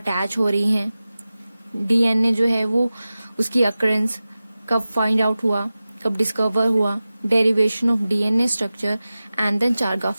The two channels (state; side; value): inverted; both; correlation -0.96